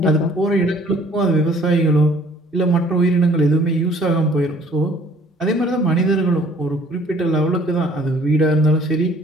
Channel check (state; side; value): normal; both; correlation 0.56